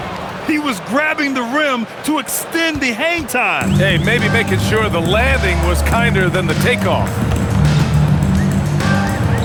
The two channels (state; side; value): identical; both; correlation 1.00